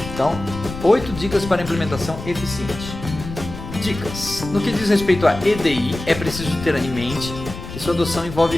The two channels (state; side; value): noise; left; rumble, 10 dB below the sound